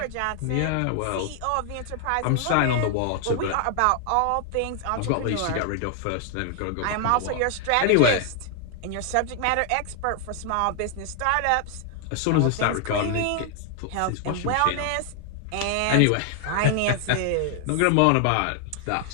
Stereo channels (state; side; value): different; both; correlation 0.00